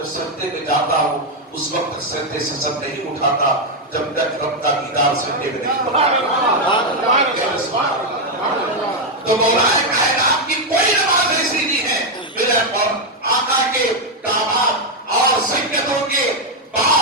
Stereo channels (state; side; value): normal; both; correlation 0.03